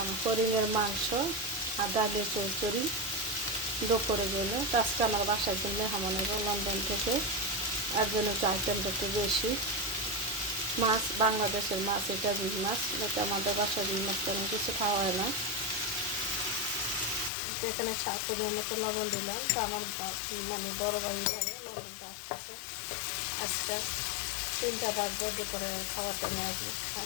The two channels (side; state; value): right; drops out; at 17.3 s